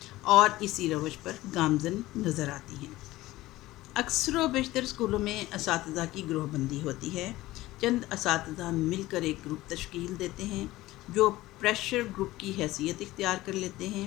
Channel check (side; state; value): right; quieter; 17.4 dB